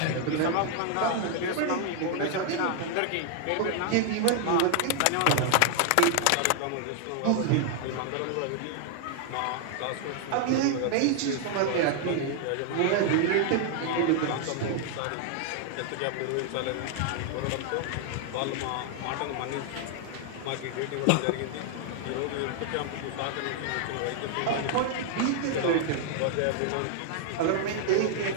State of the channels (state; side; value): different; both; correlation 0.00